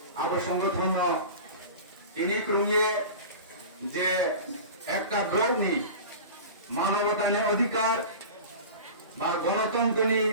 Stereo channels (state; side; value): inverted; both; correlation -0.34